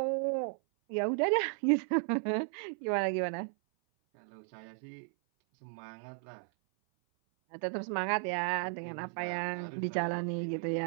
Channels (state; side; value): silent; left; 55 dB below the other